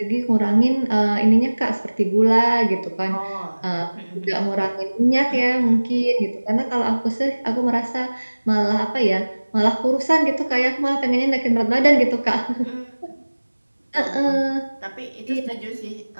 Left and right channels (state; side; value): inverted; both; correlation -1.00